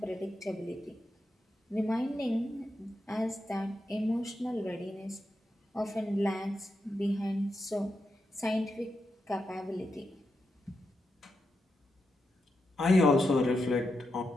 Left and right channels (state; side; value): normal; both; correlation 0.86